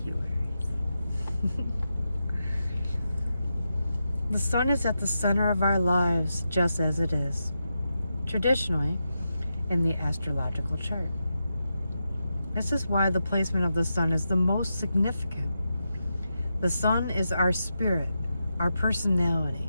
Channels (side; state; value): both; inverted; correlation -0.87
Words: you, Aries. The sun is at the center of our lives, just as it is traditionally in the astrological chart. This is why the placement of the sun is the most significant. The sun is our spirit, our personality.